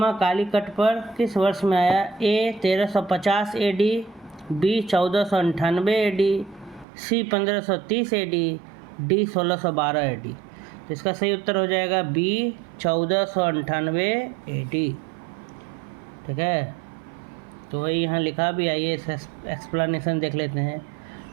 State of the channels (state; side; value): drops out; left; at 6.9 s